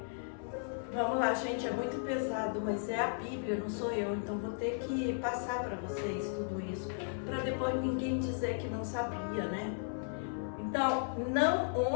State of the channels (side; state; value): right; silent; 54 dB below the other